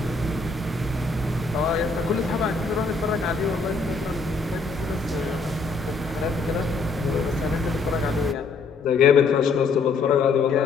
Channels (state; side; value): quieter; right; 4.1 dB